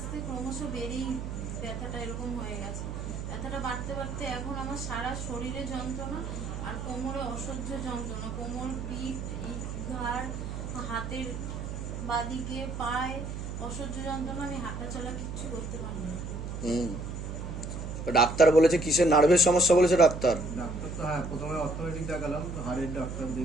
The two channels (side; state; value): right; noise; hum, 6 dB below the sound